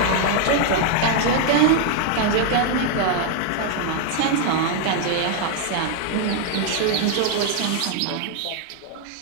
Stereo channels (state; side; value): different; both; correlation 0.00